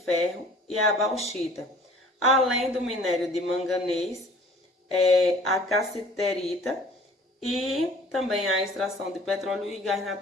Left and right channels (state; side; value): normal; both; correlation 0.49